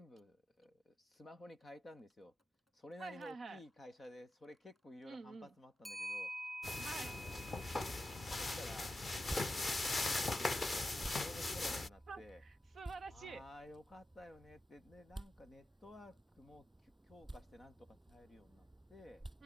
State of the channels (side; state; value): both; normal; correlation 0.91